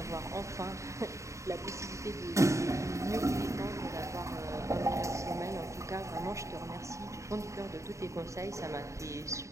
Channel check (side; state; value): left; late; 0.15 ms